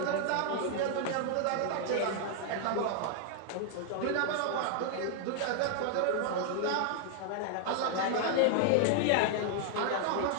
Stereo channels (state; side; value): different; both; correlation 0.00